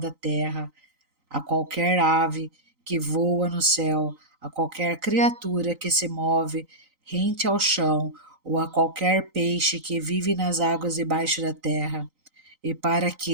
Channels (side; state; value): left; late; 3.9 ms